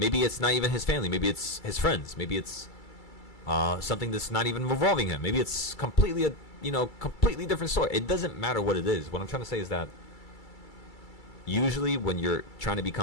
Maybe it's not even his family. Maybe it's his friends. Maybe it's something that's not even revolving him. Maybe it's completely completely different story. It doesn't matter what it is. What I'm trying to say is that usually when you're trying to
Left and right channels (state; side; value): late; right; 2.3 ms